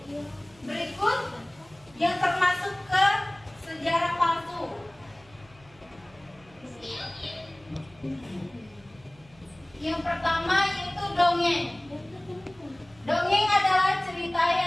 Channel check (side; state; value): right; noise; hum, 27 dB below the sound